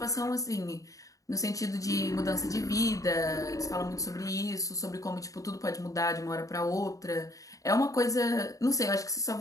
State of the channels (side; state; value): right; late; 0.16 ms